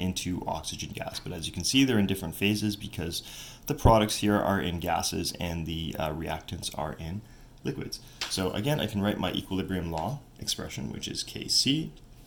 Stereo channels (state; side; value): identical; both; correlation 1.00